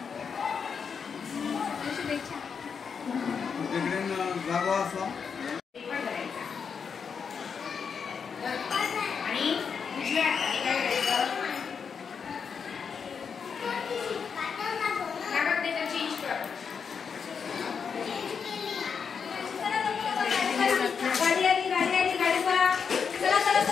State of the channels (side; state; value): right; quieter; 6.3 dB